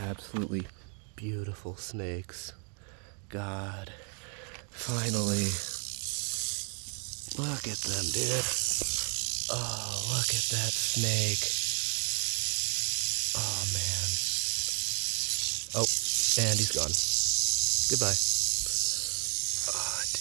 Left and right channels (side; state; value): left; quieter; 38.4 dB